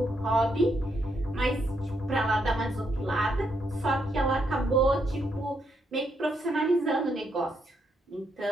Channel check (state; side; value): normal; both; correlation 0.77